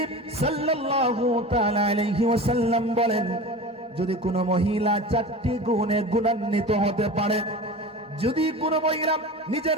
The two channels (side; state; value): both; normal; correlation 0.33